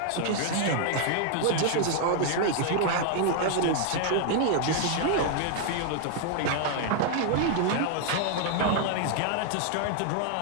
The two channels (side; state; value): both; different; correlation 0.00